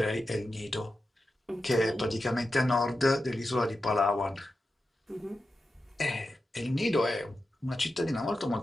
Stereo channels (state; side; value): normal; both; correlation 0.91